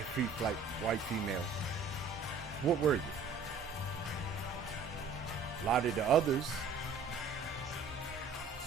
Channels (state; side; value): quieter; left; 4.6 dB